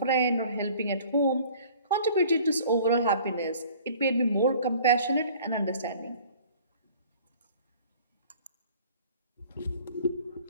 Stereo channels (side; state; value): both; inverted; correlation -0.49